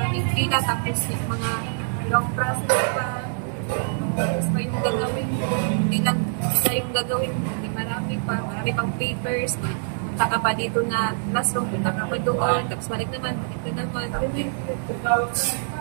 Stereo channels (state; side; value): silent; left; 62 dB below the other